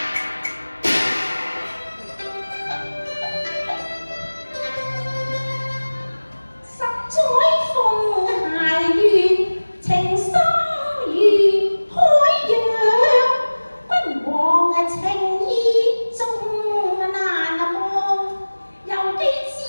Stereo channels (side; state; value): both; inverted; correlation -1.00